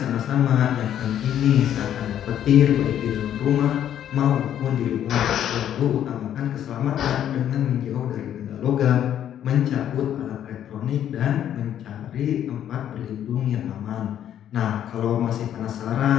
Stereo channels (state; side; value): quieter; right; 10.4 dB